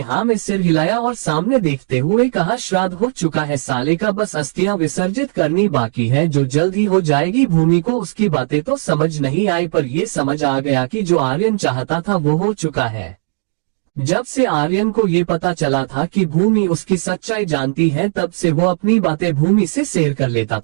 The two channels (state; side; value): silent; left; 68 dB below the other